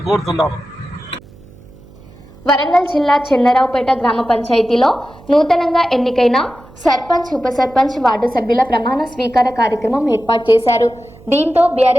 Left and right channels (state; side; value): noise; right; hum, 23 dB below the sound